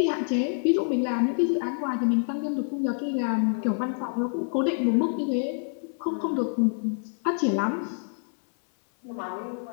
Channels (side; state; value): right; silent; 60 dB below the other